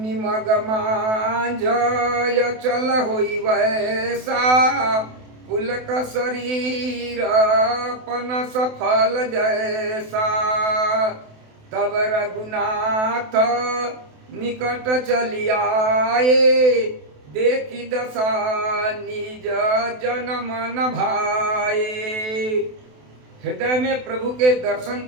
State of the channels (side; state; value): left; late; 28 ms